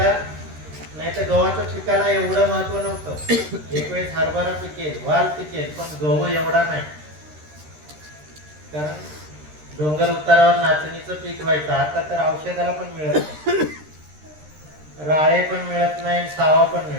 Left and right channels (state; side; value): late; left; 13 ms